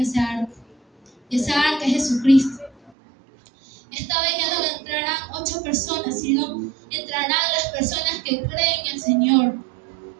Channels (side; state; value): left; drops out; at 2.9 s